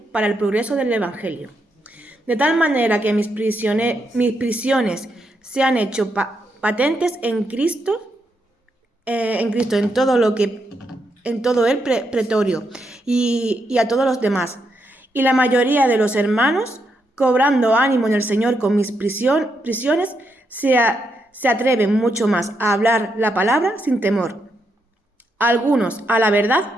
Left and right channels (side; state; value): both; normal; correlation 0.80